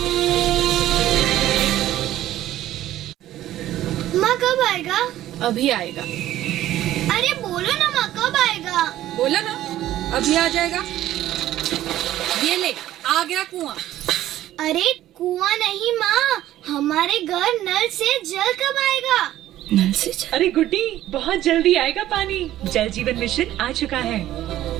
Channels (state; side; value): quieter; left; 13.7 dB